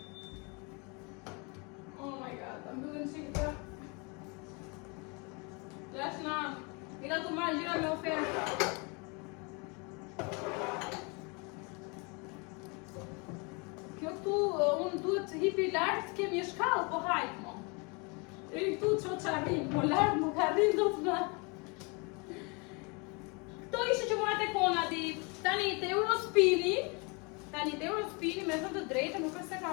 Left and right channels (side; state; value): right; quieter; 31.0 dB